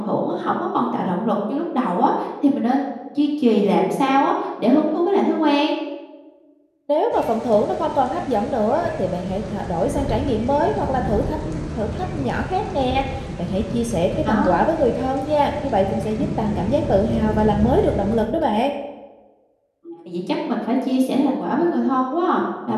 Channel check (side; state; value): both; identical; correlation 1.00